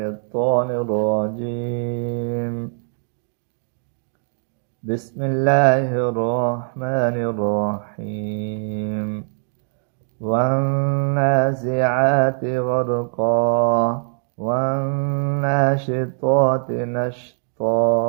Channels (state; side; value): silent; left; 64 dB below the other